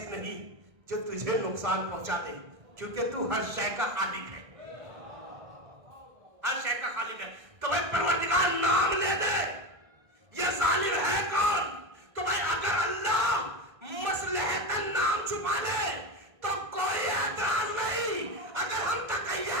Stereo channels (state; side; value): late; left; 1.6 ms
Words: نہیں جو تجھے نقصان پہنچا دے کیونکہ تو ہر شے کا خالق ہے, ہر شے کا خالق ہے. تو بھائی پروردگار نام لے دے. یہ ظالم ہے کون؟ تو بھائی اگر اللہ مصلحتاً نام چھپا دے تو کوئی اعتراض نہیں. اگر ہم تقیہ